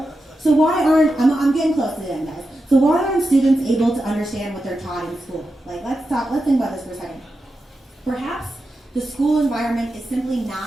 So why aren't, I'm getting close to the end, guys. So why aren't students able to understand what they're taught in school? Like, let's think about this for a second. Perhaps the school environment is simply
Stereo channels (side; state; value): both; normal; correlation 0.89